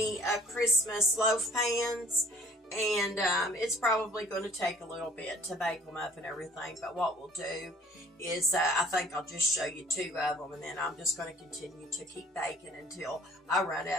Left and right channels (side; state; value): both; normal; correlation 0.52